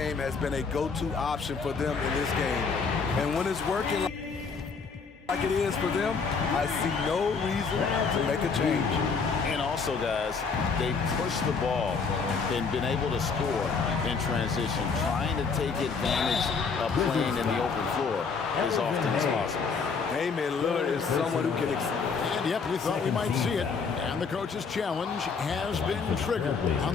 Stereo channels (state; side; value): quieter; right; 5.2 dB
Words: has been a go-to option for them in this game. And when it's working like it is for them, I see no reason to make a change. And also, guys, they push the ball and been able to score in transition, trying to take advantage of playing in the open floor as often as possible. Damian Lillard is someone who can... And yep, we thought we might see it. And the coach's challenge has been triggered